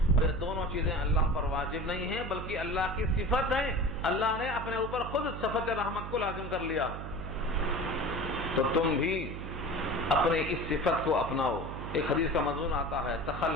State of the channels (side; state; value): right; noise; hum, 8 dB below the sound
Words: یہ دونوں چیزیں اللہ پر واجب نہیں ہیں بلکہ اللہ کی صفت ہے، اللہ نے اپنے اوپر خود صفت رحمت کو لازم کر لیا ہے، تو تم بھی اپنے اس صفت کو اپناؤ۔ ایک حدیث کا مضمون آتا ہے